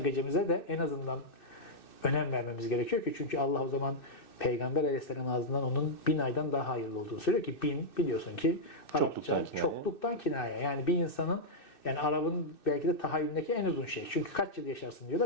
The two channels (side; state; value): right; late; 2.6 ms